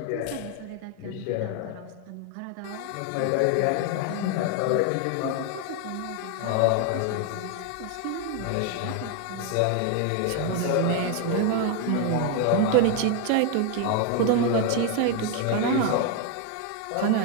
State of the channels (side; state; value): both; different; correlation 0.01